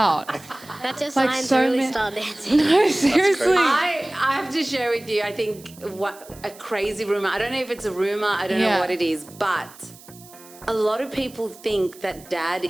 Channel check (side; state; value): right; noise; hiss, 21 dB below the sound